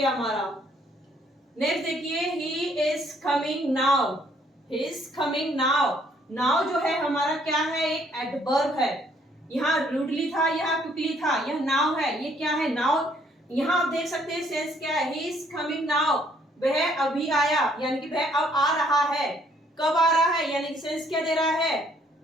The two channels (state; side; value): normal; both; correlation 0.65